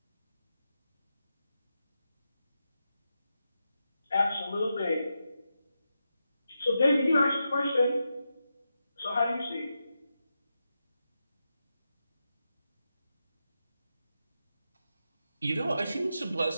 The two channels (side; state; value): both; inverted; correlation -0.87